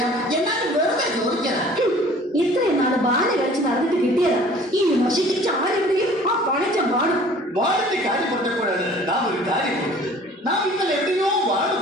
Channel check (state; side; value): normal; both; correlation 0.50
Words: എന്നാലും വെറുതെ ചോദിച്ചതാ. ഇത്രയും നാള് ബാല കളിച്ച് നടന്നിട്ട് കിട്ടിയതാ. ഈ നശിച്ച ആരെവിടെയും ആ പണച്ച പാടും. വാടിന്റെ കാര്യം പറഞ്ഞപ്പോഴാണ് നാം ഒരു കാര്യം കൊടുത്തത്. നാം ഇന്നലെ എവിടെയോ വാട്